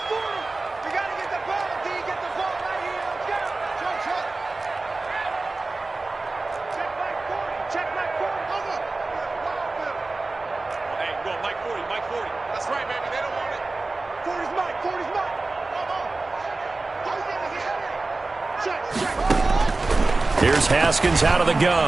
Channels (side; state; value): left; quieter; 3.3 dB